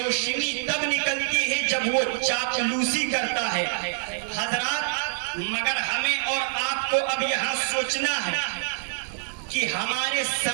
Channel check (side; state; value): left; silent; digital silence